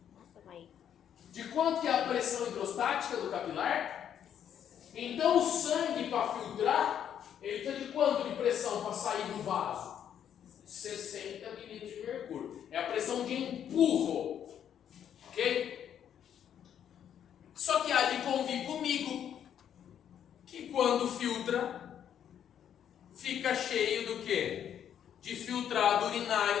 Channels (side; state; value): right; quieter; 9.3 dB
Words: Nossa, vai. De quanto que é a pressão hidrostática do capilar? Então o sangue para filtrar, ele está de quanto de pressão para sair do vaso? 60 milímetros de mercúrio. É a pressão de empurro. Ok? Só que há de convir comigo que quando filtra, fica cheio do quê? De filtrado